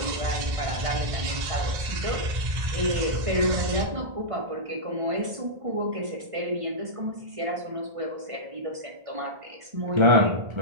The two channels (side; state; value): left; late; 1.5 ms